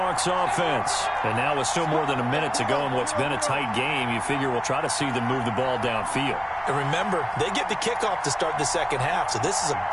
offense. And now with still more than a minute to go in what's been a tight game, you figure we'll try to see them move the ball downfield. And remember, they get the kickoff to start the second half, so this is a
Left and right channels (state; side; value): identical; both; correlation 1.00